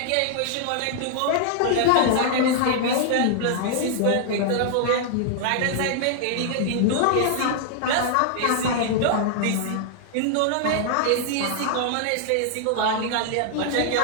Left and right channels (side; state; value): both; different; correlation 0.00